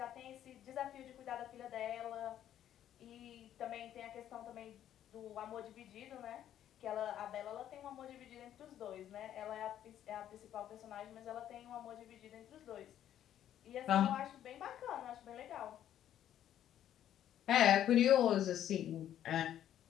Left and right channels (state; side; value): quieter; right; 11.1 dB